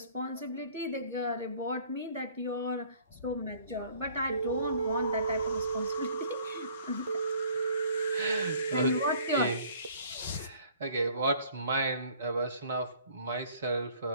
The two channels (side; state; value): both; inverted; correlation -0.55